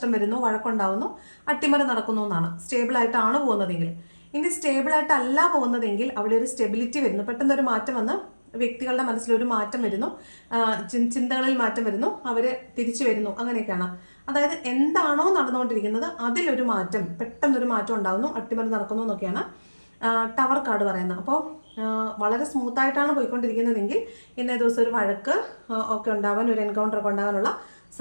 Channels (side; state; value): both; inverted; correlation -1.00